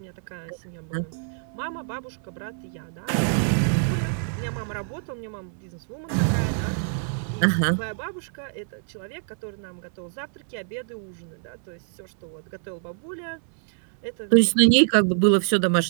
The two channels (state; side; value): silent; left; 61 dB below the other